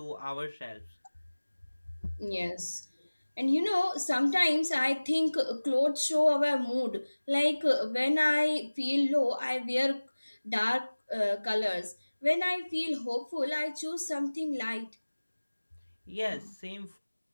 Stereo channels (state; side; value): inverted; both; correlation -1.00